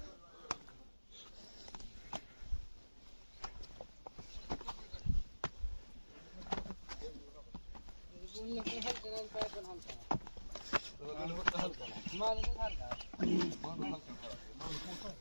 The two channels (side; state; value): both; inverted; correlation -1.00